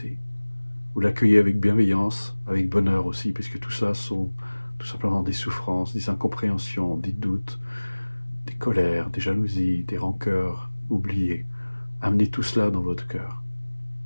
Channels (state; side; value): inverted; both; correlation -1.00